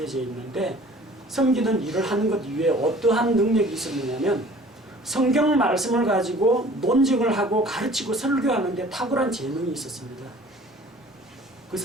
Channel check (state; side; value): normal; both; correlation 0.49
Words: 있는데 섬기는 일을 하는 것 이외에 어떠한 능력이 있었느냐면 성경 말씀을 가지고 논증을 하고 가르치고 설교하는 데 탁월한 재능이 있었습니다. 그